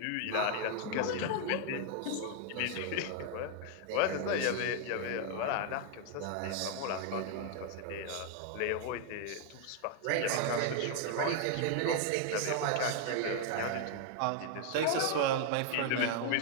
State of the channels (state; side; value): different; both; correlation 0.00